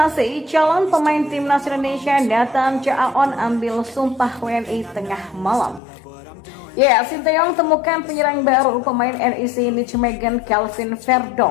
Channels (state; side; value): drops out; right; at 5.8 s